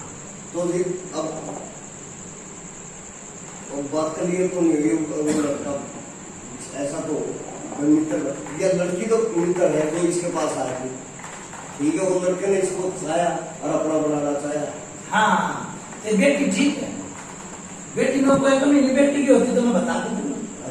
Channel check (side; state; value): both; identical; correlation 1.00